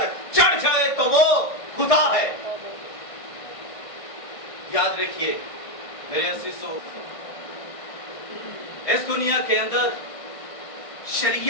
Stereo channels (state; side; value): late; right; 1.5 ms